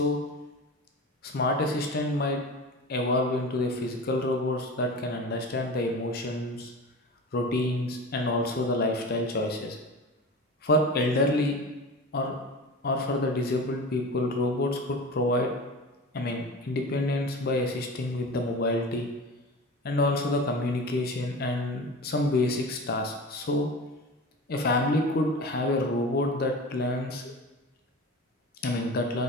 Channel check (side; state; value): both; normal; correlation 0.33